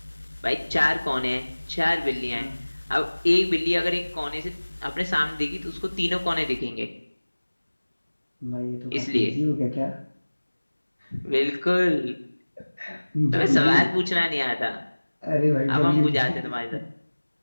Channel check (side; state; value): both; inverted; correlation -1.00